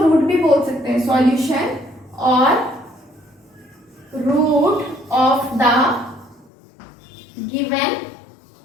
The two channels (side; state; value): right; drops out; at 6.5 s